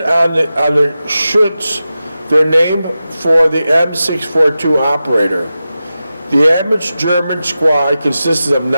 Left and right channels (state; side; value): inverted; both; correlation -0.92